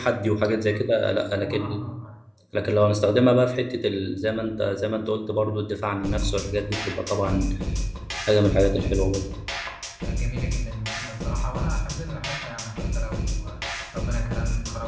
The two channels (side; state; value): both; identical; correlation 1.00